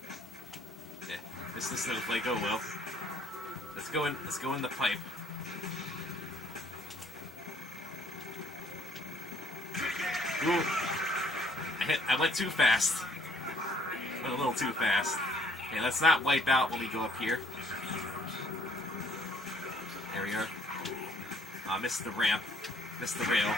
Yeah, missed the snowflake. Oh well. Let's go in the pipe. Ooh. I went too fast. Went a little too fast. Okay, let's not wipe out when we go up here. There we are. Missed the ramp. Missed the rail.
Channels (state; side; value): normal; both; correlation 0.63